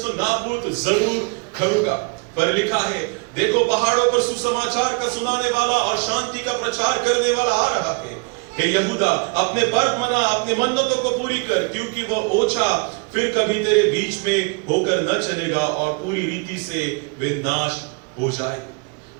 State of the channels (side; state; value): left; quieter; 33.7 dB